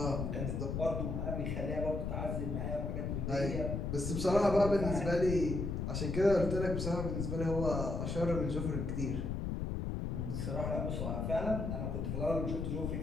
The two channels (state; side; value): noise; left; rumble, 2 dB below the sound